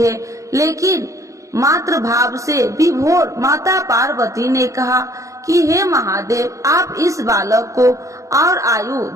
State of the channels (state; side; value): late; left; 0.15 ms